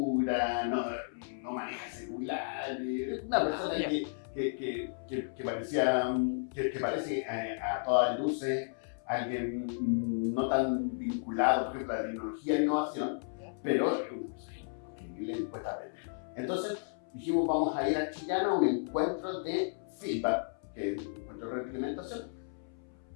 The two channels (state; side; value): silent; right; 55 dB below the other